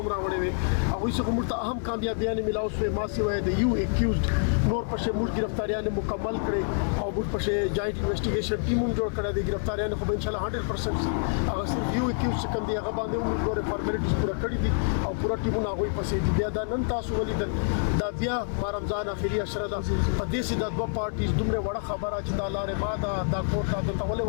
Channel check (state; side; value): silent; right; 60 dB below the other